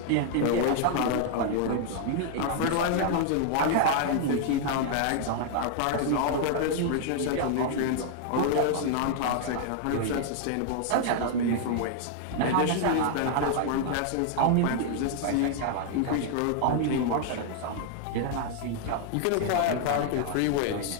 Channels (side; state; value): both; different; correlation -0.01